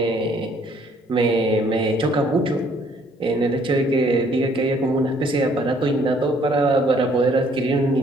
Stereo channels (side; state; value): both; normal; correlation 0.62